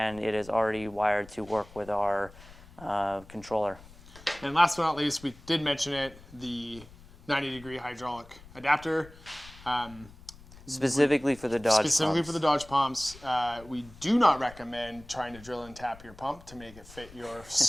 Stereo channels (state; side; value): noise; left; rumble, 21 dB below the sound